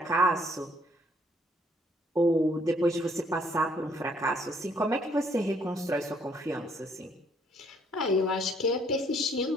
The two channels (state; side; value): normal; both; correlation 0.66